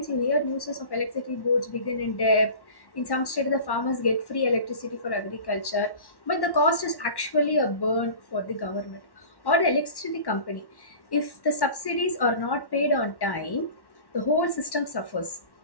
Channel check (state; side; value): late; right; 1.1 ms